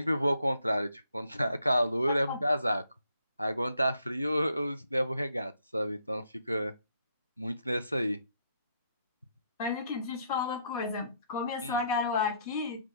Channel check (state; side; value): inverted; both; correlation -0.73